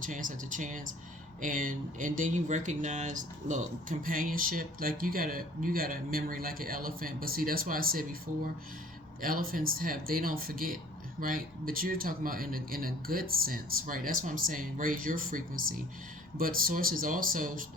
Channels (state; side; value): normal; both; correlation 0.52